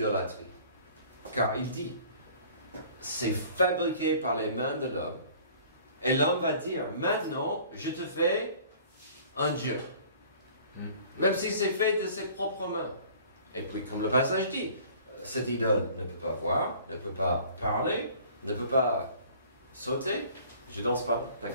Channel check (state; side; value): inverted; both; correlation -0.50